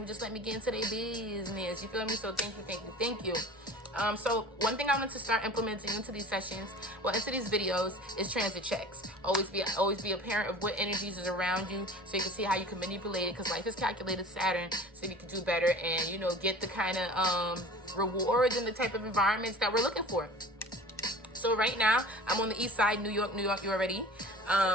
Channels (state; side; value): normal; both; correlation 0.41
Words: just let me get into their business. You feel me? So thank you, thank you, thank you. So one thing I want to start implementing into these sessions, into these videos, is transit checks. Always be a parent of what energies is around you, so you can see how you can manipulate it. Because life is calculated Saturn, so you can do better and get the kind of rewards and the type of environments that we're looking for. So right now I'm on the east side, New York. You already.